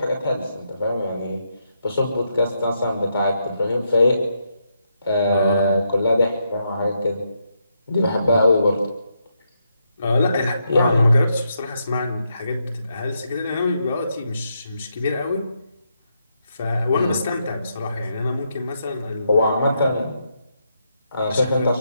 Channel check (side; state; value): both; inverted; correlation -0.81